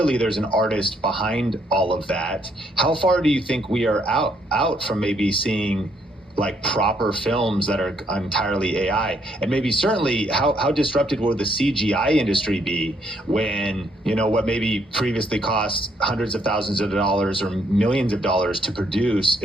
there's an artist behind all of that. How far do you think we are out from maybe seeing like proper films that are entirely AI? And maybe certainly how disrupted will the CGI industry be when, what maybe previously cost hundreds of thousands of dollars or millions of dollars to produce,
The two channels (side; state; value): both; normal; correlation 0.71